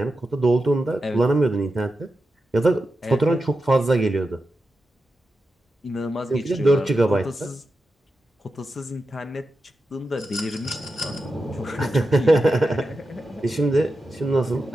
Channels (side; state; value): both; normal; correlation 0.90